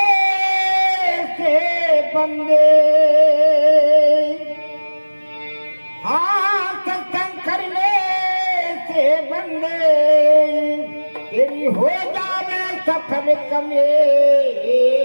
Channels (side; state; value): both; inverted; correlation -1.00